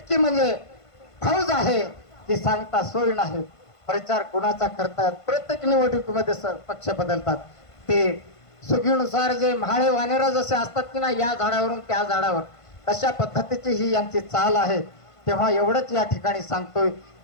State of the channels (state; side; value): late; right; 1.5 ms